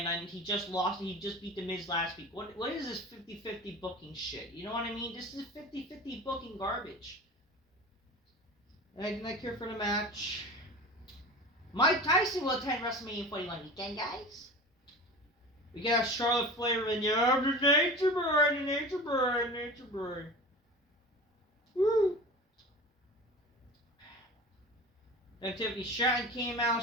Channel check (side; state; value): both; normal; correlation 0.35